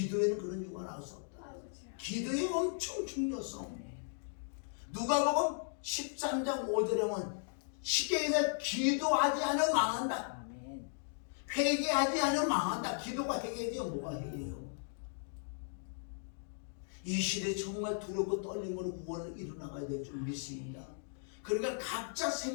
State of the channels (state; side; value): silent; right; digital silence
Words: 그런 유가 나올 수 없다. 기도의 엄청 중요성. 누가복음 13장 5절에 보면 쉽게 얘기해서 기도하지 않으면 망한다. 회개하지 않으면 망한다. 기도가 회개지요. 뭐가 회개예요? 이 시대에 정말 두렵고 떨림으로 구원을 이루나가야 될 줄 믿습니다. 그러니까 각자